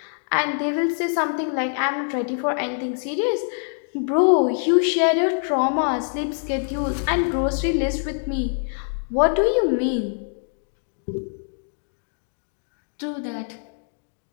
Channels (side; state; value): right; silent; digital silence